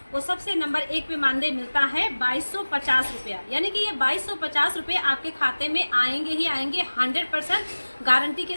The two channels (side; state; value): both; inverted; correlation -1.00